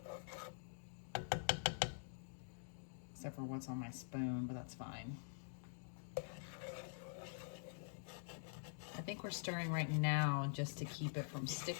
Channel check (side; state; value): right; silent; digital silence